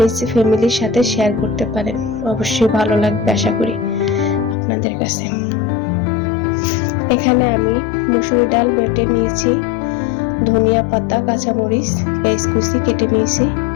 ফ্যামিলির সাথে শেয়ার করতে পারেন। অবশ্যই ভালো লাগবে আশা করি আপনাদের কাছে। এখানে আমি মসুরি ডাল বেটে নিয়েছি, ধনিয়া পাতা, কাঁচামরিচ, পেঁয়াজ কুচি কেটে নিয়েছি।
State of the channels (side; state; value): right; drops out; at 4.5 s